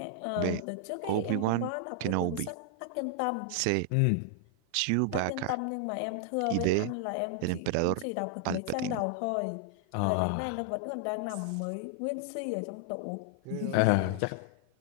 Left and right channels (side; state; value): both; different; correlation 0.00